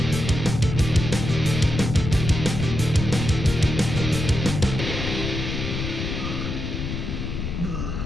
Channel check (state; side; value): noise; left; rumble, 4 dB below the sound